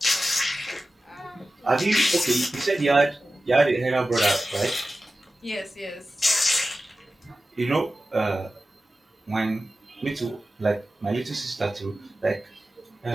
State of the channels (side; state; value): both; normal; correlation 0.95